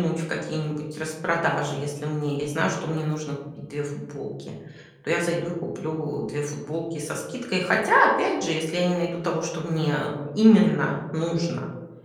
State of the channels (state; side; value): identical; both; correlation 1.00